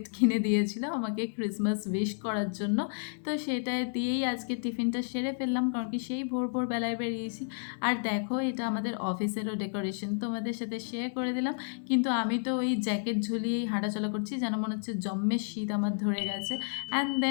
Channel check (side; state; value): right; silent; 57 dB below the other